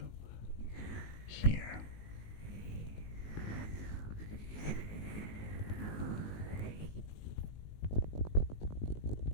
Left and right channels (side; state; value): right; late; 19 ms